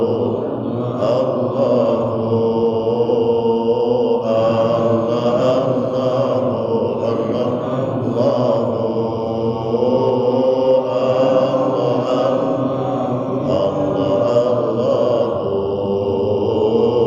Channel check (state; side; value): identical; both; correlation 1.00